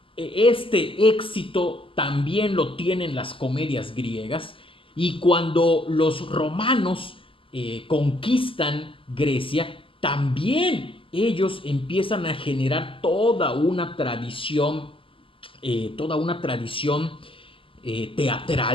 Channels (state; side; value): late; right; 0.25 ms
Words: este éxito también lo tienen las comedias griegas. Y cuando los romanos conquistan Grecia, también ellos empiezan a generar toda una tradición